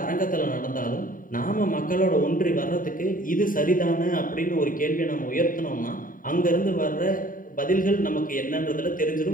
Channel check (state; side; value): late; right; 0.40 ms